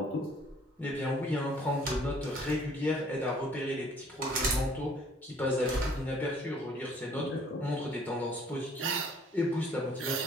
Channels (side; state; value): both; normal; correlation 0.58